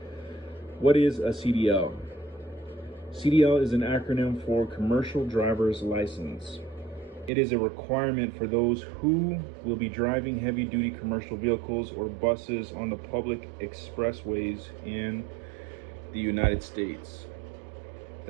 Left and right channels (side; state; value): left; drops out; at 7.3 s